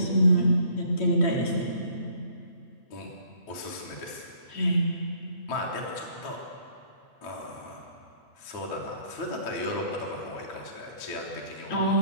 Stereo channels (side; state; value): right; late; 9.1 ms